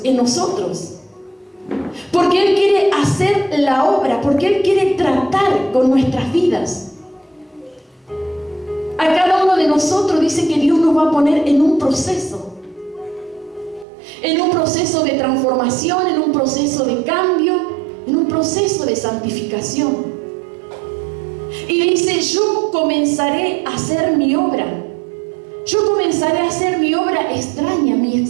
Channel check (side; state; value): left; drops out; at 13.9 s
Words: en nosotros. Porque Él quiere hacer la obra. Porque Él quiere tratar con nuestras vidas. A cada uno de nosotros dice que Dios nos va a poner en un proceso. En un proceso de transformación, en un proceso de cambio, en un proceso de santificación. Y dice: yo comenzaré a hacer mi obra. Yo comenzaré a hacer mi obra extraña, mi